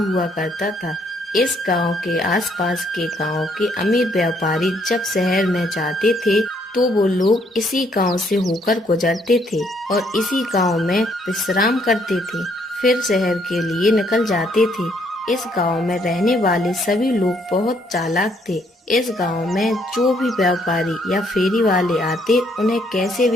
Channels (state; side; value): normal; both; correlation 0.69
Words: हुआ करता था। इस गांव के आसपास के गांव के अमीर व्यापारी जब शहर में जाते थे तो वो लोग इसी गांव से होकर गुजरते थे और इसी गांव में विश्राम करते थे, फिर शहर के लिए निकल जाते थे। इस गांव में रहने वाले सभी लोग बहुत चालाक थे। इस गांव में जो भी व्यापारी या फेरी वाले आते उन्हें कैसे